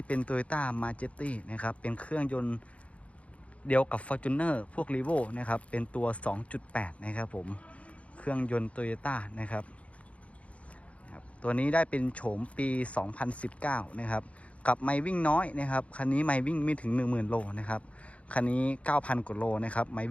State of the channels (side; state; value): right; late; 0.064 ms